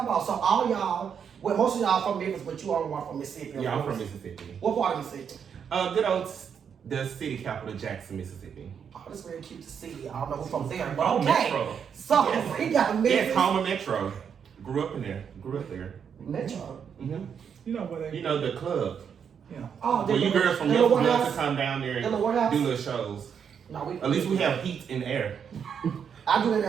on. So all y'all, well, most of y'all from Memphis, but you all are from Mississippi. Yeah, I'm from Mississippi. What part of Mississippi? Good old, the city capital, Jackson, Mississippi. Oh, that's very cute to see. I don't know who's from there, but Oh, okay. Metro. So Yes. we got Memphis. Yes, home of Metro. Grew up in there. Grew up there. Metro. Mm-hmm. You know what? You know the club. Yeah. Oh, Well, you girls from Memphis love to come down there The warehouse? and do little shows. No, At least we have heat in the air. I do that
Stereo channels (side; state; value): left; quieter; 7.4 dB